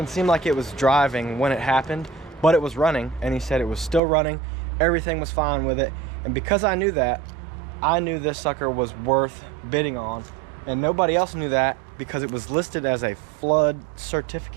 seem like it was driving when it happened, but it was running, and he said it was still running. Everything was fine with it. And because I knew that, I knew this sucker was worth bidding on, and nobody else knew that because it was listed as a flood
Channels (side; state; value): left; drops out; at 4.0 s